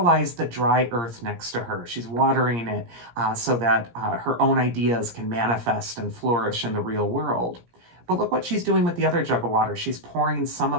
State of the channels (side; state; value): left; late; 17 ms